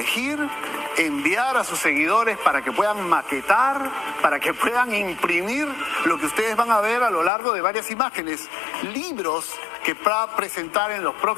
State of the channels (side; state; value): right; drops out; at 7.3 s